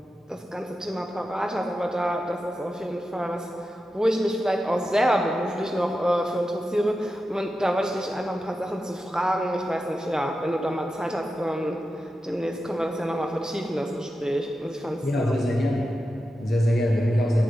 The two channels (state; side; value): normal; both; correlation 0.90